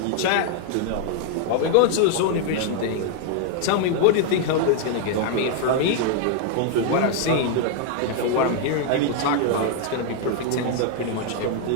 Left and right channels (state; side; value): different; both; correlation 0.00